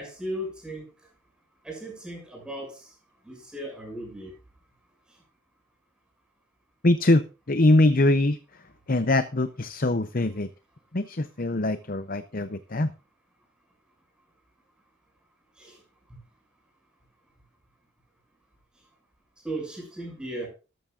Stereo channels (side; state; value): both; normal; correlation 0.66